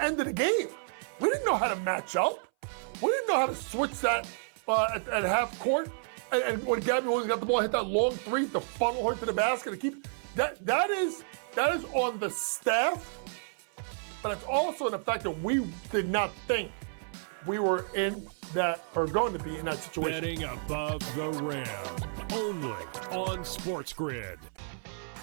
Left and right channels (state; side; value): silent; left; 57 dB below the other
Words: end of the game. We didn't know how to match up. We didn't know how to switch that at half court. And when Gabby Williams got the ball, hit that long three to funnel her to the basket to keep that is on the staff, but it's also in the fact that we did not think we were in that or going to be in that situation. Betting above the rim, only on SportsGrid.